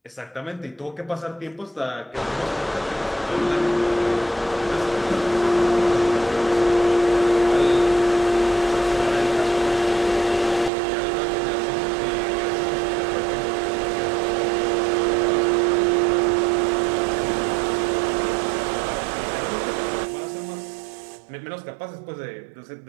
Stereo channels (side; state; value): left; drops out; at 10.7 s